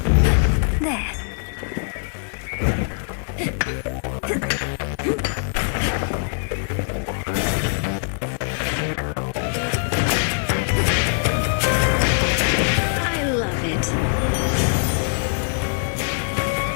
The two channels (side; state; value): right; silent; digital silence